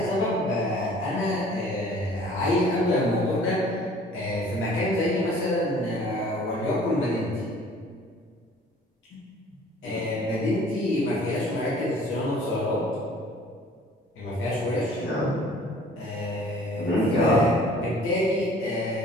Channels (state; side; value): normal; both; correlation 0.52